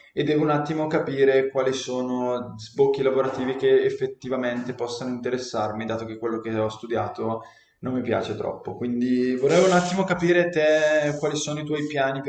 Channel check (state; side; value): identical; both; correlation 1.00